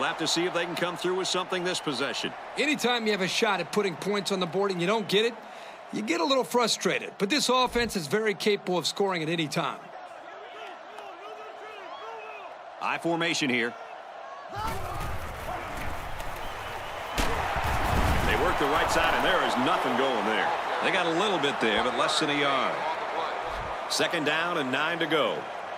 have to see if they can come through with something this possession. Anytime you have a shot at putting points on the board and you don't get it, you get a little frustrated. But this offense is very capable of scoring at any time. I formation here. They work the right side, and there is nothing going there. They got a little bit there, but less than a yard. 2nd down and 9 to go.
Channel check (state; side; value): identical; both; correlation 1.00